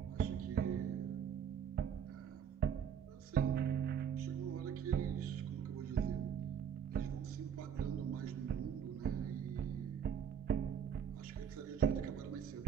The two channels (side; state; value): left; quieter; 8.1 dB